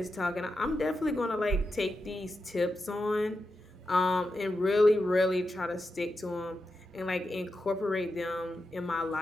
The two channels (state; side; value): normal; both; correlation 0.88